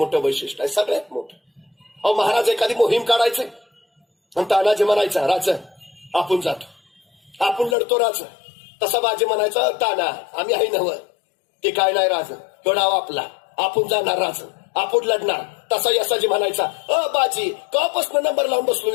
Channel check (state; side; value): drops out; right; at 7.8 s